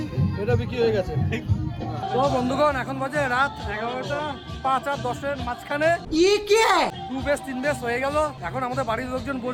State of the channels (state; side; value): identical; both; correlation 1.00